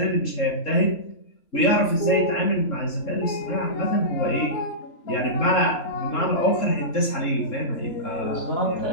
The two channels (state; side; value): late; right; 3.7 ms